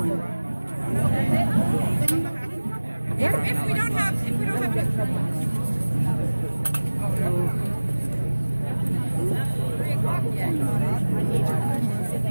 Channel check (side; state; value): both; inverted; correlation -1.00